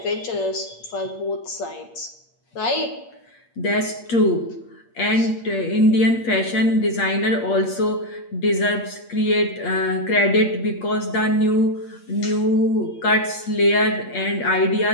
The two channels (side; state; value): right; late; 8.5 ms